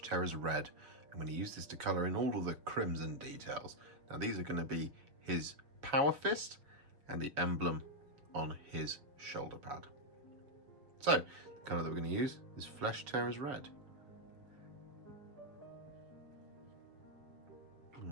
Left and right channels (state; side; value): late; left; 7.2 ms